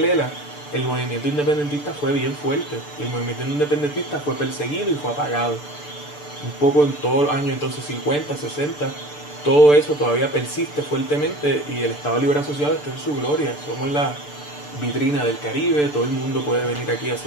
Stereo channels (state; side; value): late; right; 6.8 ms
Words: ELA, el movimiento independentista fue bien fuerte. El movimiento independentista fue perseguido y fue apagado. Un poco en todos los años entonces 50, 60, todo eso todavía persiste fuertemente y el Estado Libre Asociado está en su gloria. Somos la vitrina del Caribe, todo el mundo puede venir aquí a